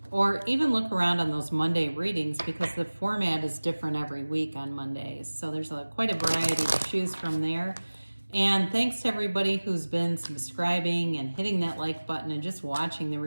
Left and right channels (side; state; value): both; inverted; correlation -1.00